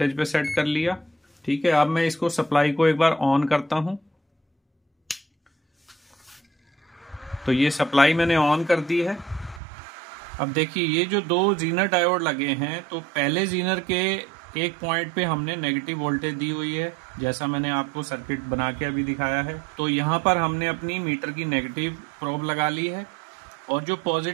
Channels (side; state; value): left; drops out; at 9.6 s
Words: पे सेट कर लिया। ठीक है, अब मैं इसको सप्लाई को एक बार ऑन करता हूं। तो ये सप्लाई मैंने ऑन कर दी है। अब देखिए ये जो दो जीनर डायोड लगे हैं, तो पहले जीनर के एक पॉइंट पे हमने नेगेटिव वोल्टेज दी हुई है, जैसा मैंने आपको सर्किट बना के अभी दिखाया है। तो यहाँ पर हमने अपनी मीटर की नेगेटिव प्रोब लगा ली है और जो